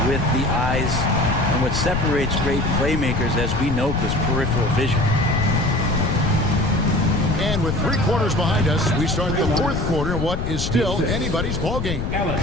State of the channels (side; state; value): left; noise; rumble, 3 dB below the sound